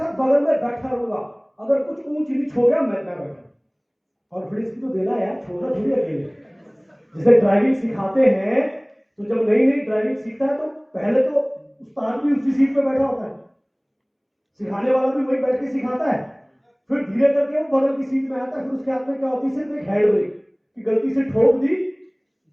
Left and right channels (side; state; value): both; identical; correlation 1.00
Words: बगल में बैठा रहूंगा। अगर कुछ ऊंच नीच हो गया मैं बैठा, कॉन्फिडेंस भी तो देना है यार, छोड़ना थोड़ी अकेले। जैसे ड्राइविंग सिखाते हैं तो जब नई नई ड्राइविंग सीखता है तो पहले तो उस्ताद भी उसी सीट पे बैठा होता है, सिखाने वाला भी वही बैठ के सिखाता है, फिर धीरे करके वो बगल की सीट में आता है, फिर उसके हाथ में क्या होती है, सिर्फ एक हैंड ब्रेक, कि गलती से ठोक दी